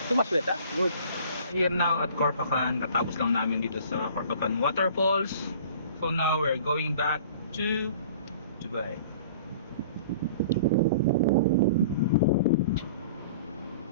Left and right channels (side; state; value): both; inverted; correlation -0.47